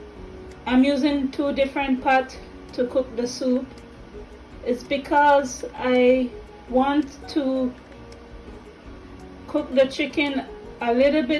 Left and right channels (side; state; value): both; identical; correlation 1.00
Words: using 2 different pots to cook the soup is because I want to cook the chicken a little